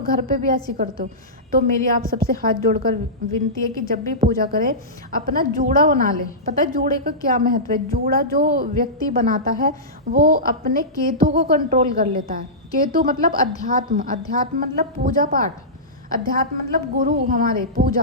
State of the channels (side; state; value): both; normal; correlation -0.17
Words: घर पे भी ऐसी करते हो। तो मेरी आप सबसे हाथ जोड़कर विनती है कि जब भी पूजा करें अपना जूड़ा बना ले। पता है जूड़े का क्या महत्व है? जूड़ा जो व्यक्ति बनाता है वो अपने केतु को कंट्रोल कर लेता है। केतु मतलब अध्यात्म, अध्यात्म मतलब पूजा पाठ, अध्यात्म मतलब गुरु हमारे,